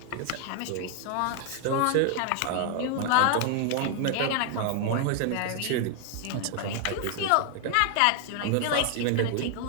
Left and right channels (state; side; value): different; both; correlation 0.00